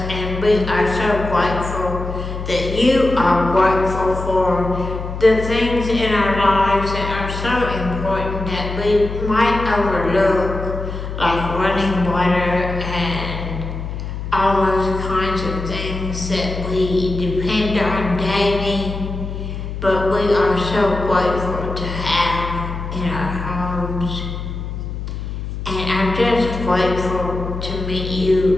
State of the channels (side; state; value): left; noise; hum, 6 dB below the sound